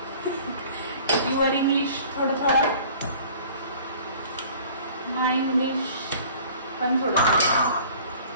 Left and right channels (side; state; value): both; inverted; correlation -0.49